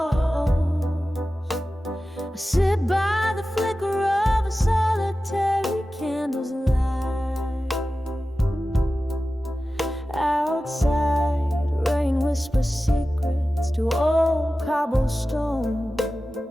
I sit by the flicker of a solitary candle's light. Outside, rain whispers secrets to old cobblestone,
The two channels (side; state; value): both; normal; correlation 0.95